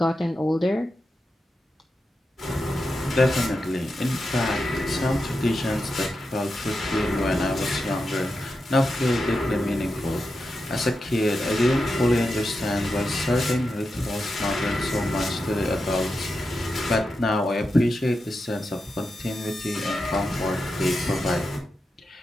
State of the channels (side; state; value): both; normal; correlation 0.88